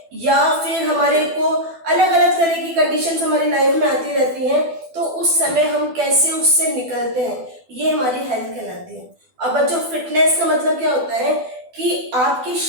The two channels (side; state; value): left; late; 12 ms